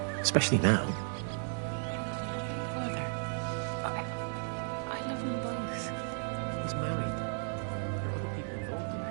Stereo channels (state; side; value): silent; left; 55 dB below the other